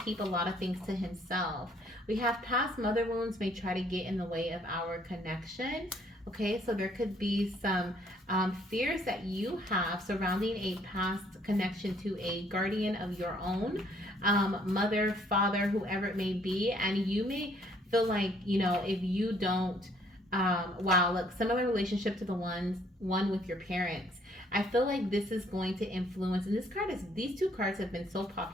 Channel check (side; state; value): both; normal; correlation 0.64